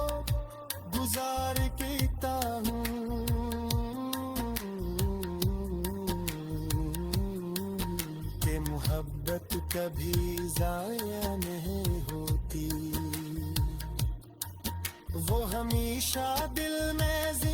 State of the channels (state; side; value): identical; both; correlation 1.00